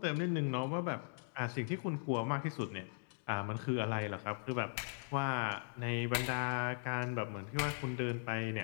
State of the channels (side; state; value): right; silent; digital silence